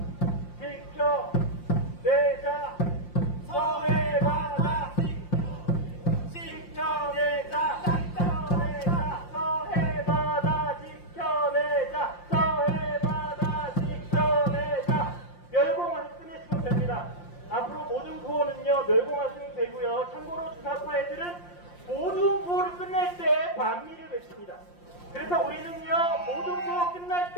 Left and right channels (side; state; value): right; late; 5.7 ms